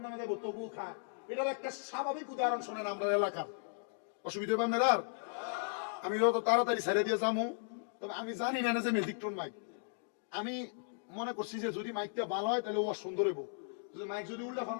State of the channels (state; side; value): silent; right; digital silence